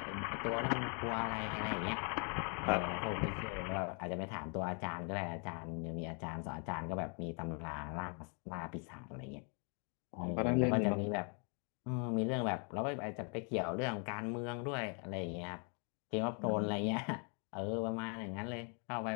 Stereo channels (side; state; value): right; quieter; 38.6 dB